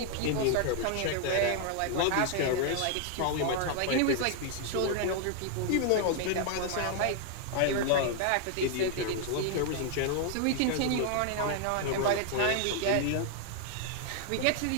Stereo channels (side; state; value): both; different; correlation 0.00